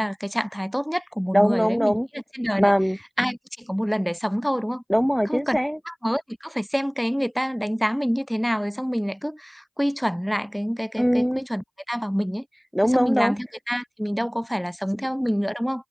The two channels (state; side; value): identical; both; correlation 1.00